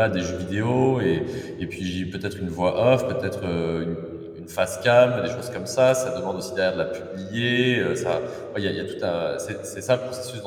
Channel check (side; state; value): both; identical; correlation 1.00